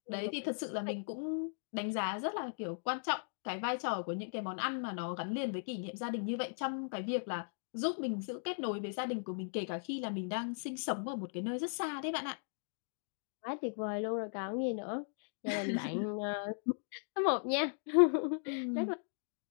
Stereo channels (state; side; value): silent; right; digital silence